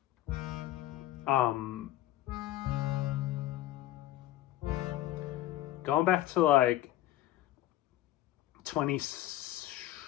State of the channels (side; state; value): right; quieter; 14.5 dB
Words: um, going back to 20